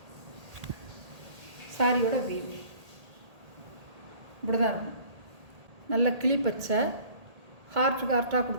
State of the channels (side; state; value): left; late; 1.8 ms